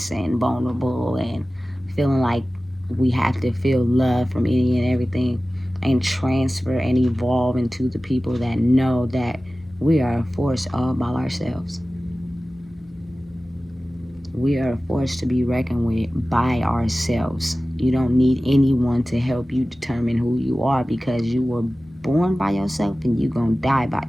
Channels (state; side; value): normal; both; correlation 0.96